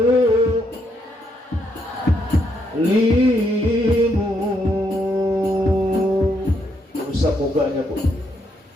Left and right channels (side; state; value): both; normal; correlation 0.76